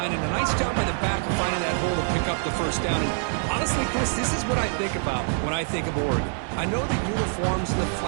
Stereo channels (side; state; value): left; silent; 62 dB below the other